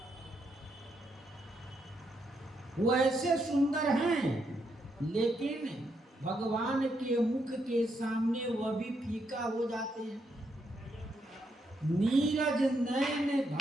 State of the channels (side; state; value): both; normal; correlation 0.79